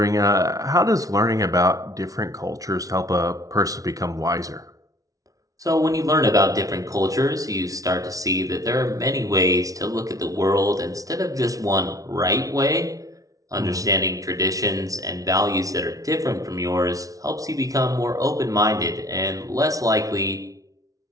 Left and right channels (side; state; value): left; late; 0.17 ms